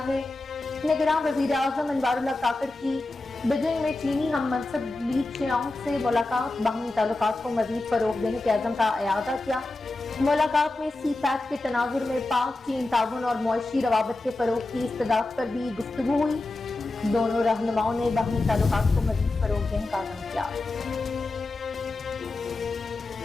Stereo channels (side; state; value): right; quieter; 3.0 dB